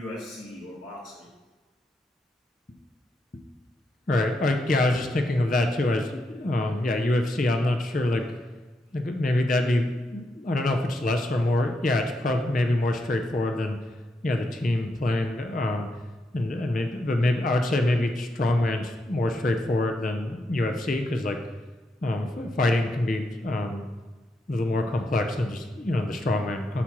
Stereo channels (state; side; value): normal; both; correlation 0.82